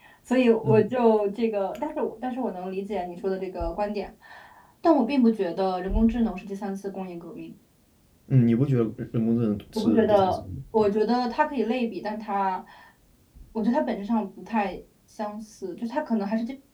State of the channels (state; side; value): identical; both; correlation 1.00